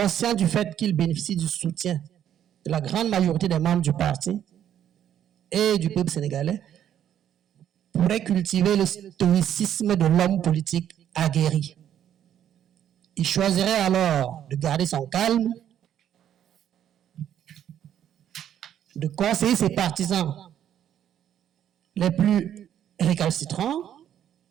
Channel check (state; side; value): quieter; left; 10.2 dB